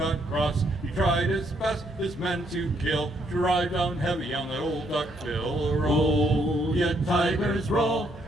cross. He tried his best, his men to kill, to ride down heavy on that old duckbill. Roll, you tigers, roll.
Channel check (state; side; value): normal; both; correlation 0.72